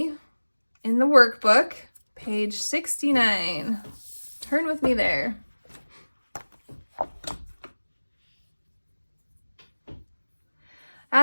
in the workbook, page 69. Turn with me there.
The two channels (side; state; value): both; inverted; correlation -1.00